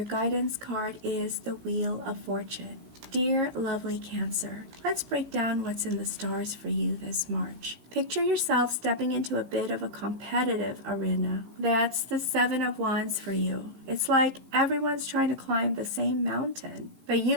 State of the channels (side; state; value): left; late; 16 ms